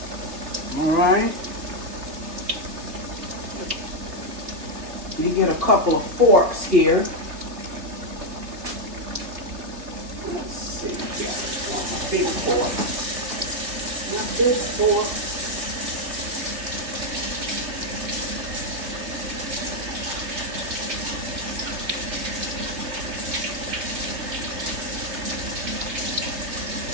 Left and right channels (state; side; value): late; left; 3.3 ms